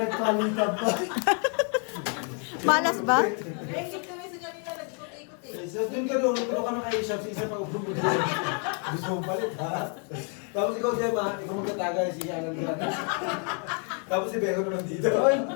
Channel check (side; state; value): right; quieter; 39.8 dB